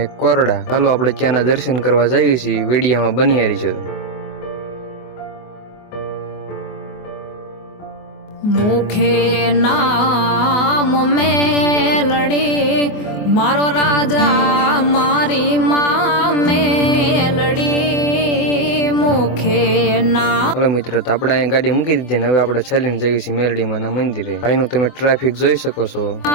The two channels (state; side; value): late; right; 24 ms